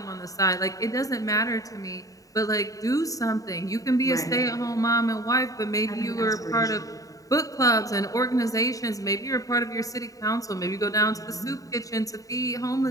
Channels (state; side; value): late; right; 0.16 ms